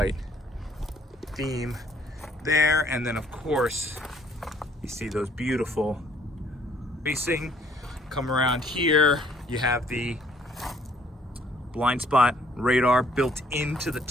theme there. And then, of course, you see those beautiful racing. Come around here, you have the blind spot radar built into the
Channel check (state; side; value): normal; both; correlation 0.62